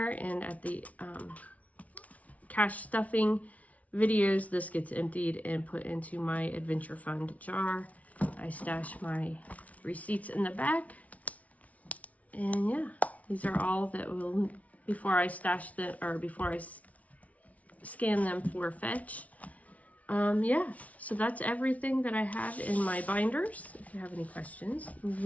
and at the cash stuffing videos, this gets emptied and put into my adventure fund jar. I stash my receipts in the back. And yeah, these are all that will, before I stash them, or before I scan them for fetch. Yeah, so that's everything that I have in my binders. If you have any questions,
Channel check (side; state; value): right; late; 0.068 ms